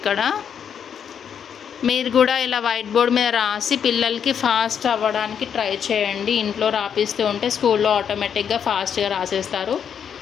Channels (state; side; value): quieter; right; 7.9 dB